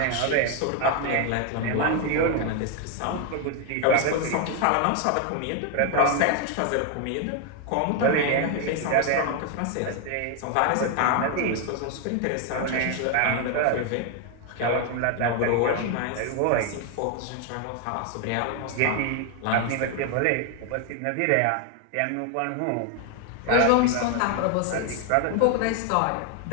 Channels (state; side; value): different; both; correlation 0.01